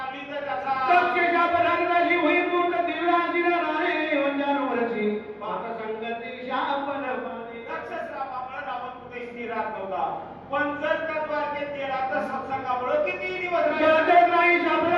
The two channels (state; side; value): identical; both; correlation 1.00